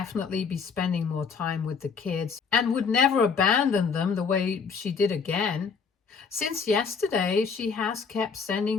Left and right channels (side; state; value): right; quieter; 5.7 dB